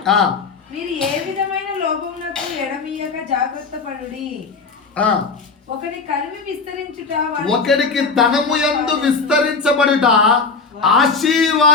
మీరు ఏ విధమైన లోపమునకు ఎడమీయక జాగ్రత్త పడుడి. ఒకడికి ధనము యందు విస్తరించబడుట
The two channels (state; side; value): quieter; right; 4.5 dB